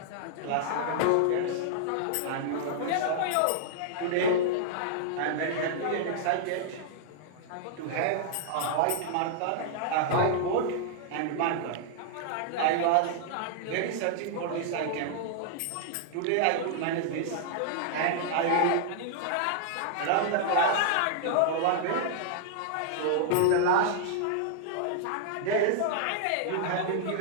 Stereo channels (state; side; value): different; both; correlation -0.01